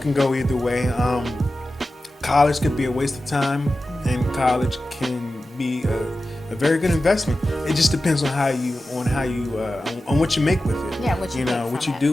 go either way. College could be a waste of time, and college can be a very good investment. It just depends on on what you make with it. Yeah, what you know, make what from you it.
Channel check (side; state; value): both; normal; correlation 0.94